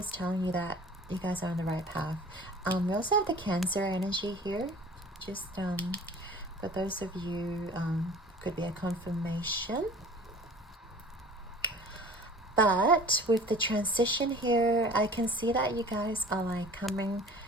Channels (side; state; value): both; normal; correlation 0.44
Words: telling you that you guys are on the right path. We also have the Cancer energy here, just for those of you, could be a confirmation. But with the transition here, I can see that you guys are like coming,